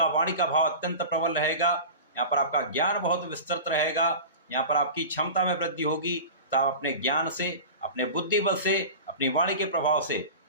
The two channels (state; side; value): inverted; both; correlation -0.33